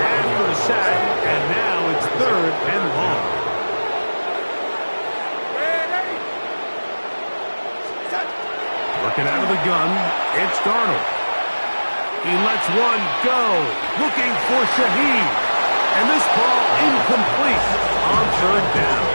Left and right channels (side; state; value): both; inverted; correlation -1.00